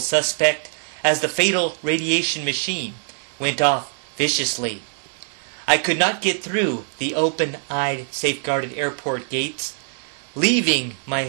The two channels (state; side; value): silent; left; digital silence